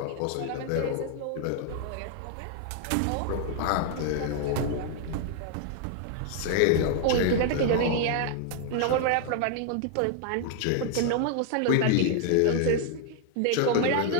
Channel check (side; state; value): both; different; correlation 0.00